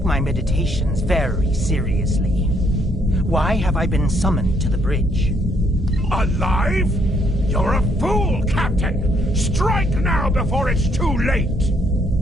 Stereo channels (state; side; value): normal; both; correlation 0.69